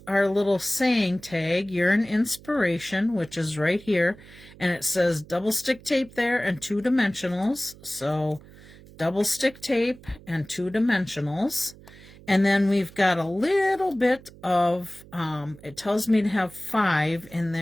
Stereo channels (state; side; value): noise; right; hum, 21 dB below the sound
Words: our little saying tag, "You're an inspiration," which is right here. And it says double stick tape there and 2 dimensionals. So double stick tape and 2 dimensionals. And then we've got a little bit of, it tells me to have 5 in